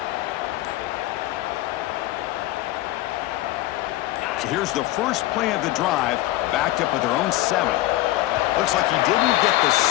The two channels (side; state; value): right; quieter; 16.1 dB